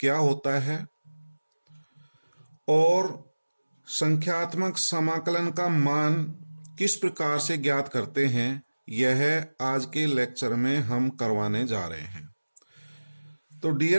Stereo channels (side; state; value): both; inverted; correlation -1.00